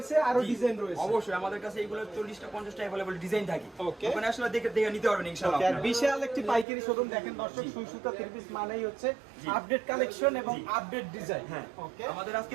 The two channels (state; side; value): drops out; left; at 6.7 s